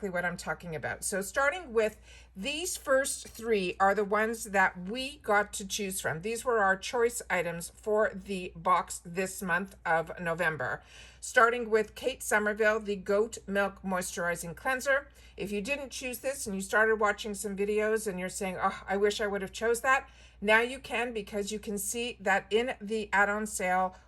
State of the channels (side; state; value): both; identical; correlation 1.00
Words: what I'm talking about. So starting with these first 3 are the ones that we got to choose from. These were our choice items for the box this month of November. Starting with Kate Somerville, the Goat Milk Moisturizing Cleanser. If you didn't choose this and you started watching some videos and you're saying, oh, I wish I would have chose that, now you can, because you can see that in the add-on sale